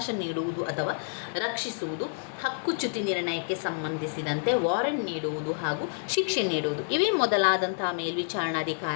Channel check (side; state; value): right; silent; digital silence